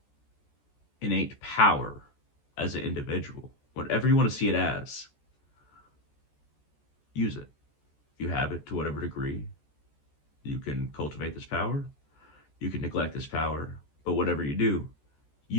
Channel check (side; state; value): right; late; 14 ms